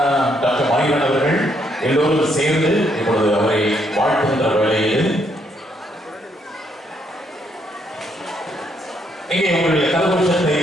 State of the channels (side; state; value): both; normal; correlation 0.73